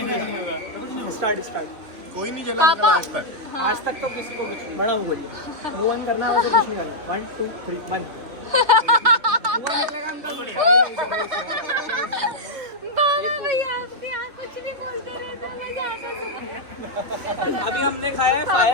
Start start. कोई नहीं जला पापा आज तक। हाँ आज तक तो किसी को कुछ नहीं। मैडम बोलिए। वो वन करना है तो कुछ नहीं करना। 1 2 3 1। भैया आपके यहाँ कुछ नहीं बोलते रहे तो मजा आता है। अभी हमने खाया है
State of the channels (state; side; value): late; left; 3.1 ms